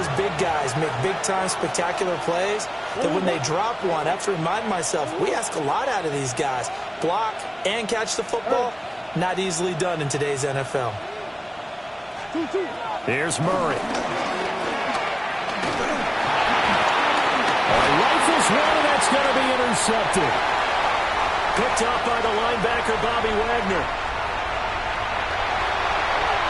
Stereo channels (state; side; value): identical; both; correlation 1.00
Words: big guys make big-time spectacular plays that when they drop one, I have to remind myself, we ask a lot out of these guys. Block and catch the football, not easily done in today's NFL. Here's Murray. Rifles one, and that's going to be intercepted. Picked up by the linebacker, Bobby Wagner.